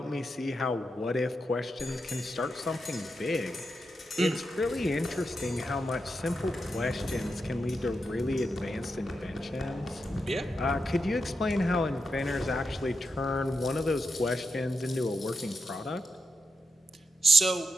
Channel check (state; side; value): normal; both; correlation 0.86